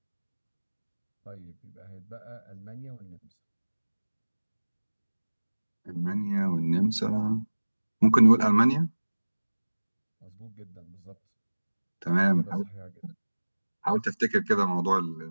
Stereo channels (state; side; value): inverted; both; correlation -1.00